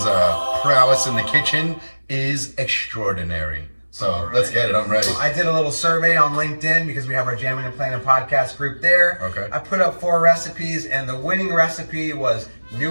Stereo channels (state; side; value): inverted; both; correlation -1.00